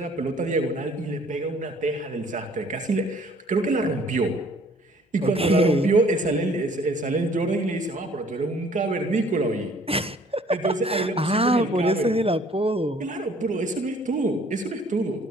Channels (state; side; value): normal; both; correlation 0.57